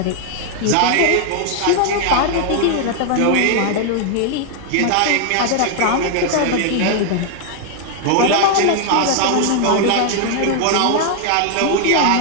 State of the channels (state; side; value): different; both; correlation 0.00